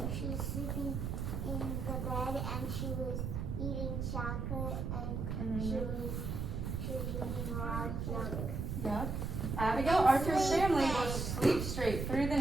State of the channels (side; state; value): right; noise; rumble, 2 dB below the sound